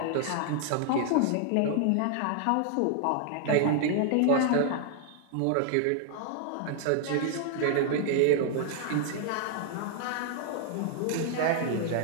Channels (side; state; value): both; different; correlation 0.00